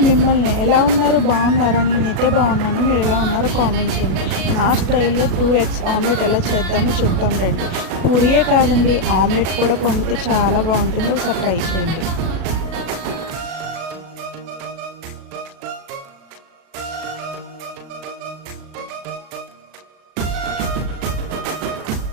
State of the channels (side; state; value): left; late; 37 ms